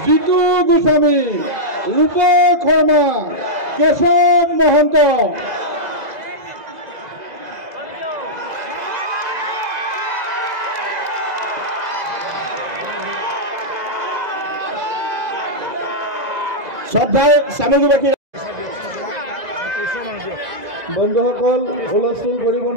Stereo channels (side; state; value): left; late; 2.0 ms